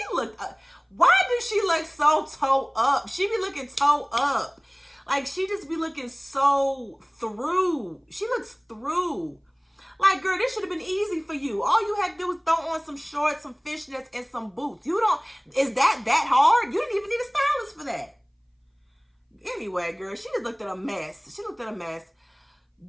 looked why does she look so toe up? She be looking toe up. Like, she just be looking so through. She looks through. Like, girl, this should have been easy for you. All you had to do was throw on some shorts, some fishnets, and some boots. Is that hard? You didn't even need a stylist for that. Anyway, girl, she just looked at a mess. She looked at a mess.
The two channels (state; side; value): identical; both; correlation 1.00